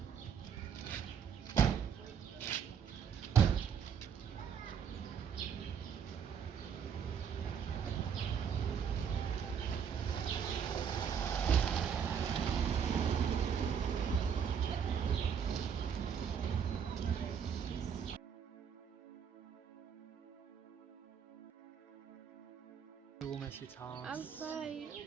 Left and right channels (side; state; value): left; quieter; 7.5 dB